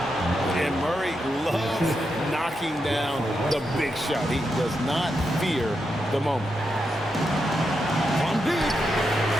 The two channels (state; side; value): normal; both; correlation 0.85